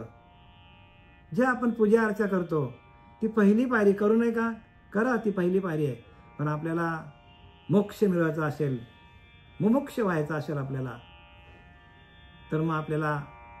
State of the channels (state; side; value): identical; both; correlation 1.00